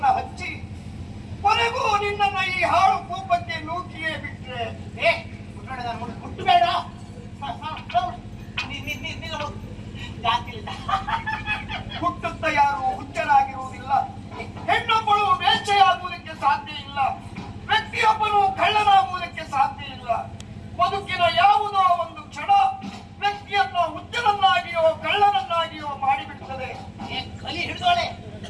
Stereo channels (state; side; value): identical; both; correlation 1.00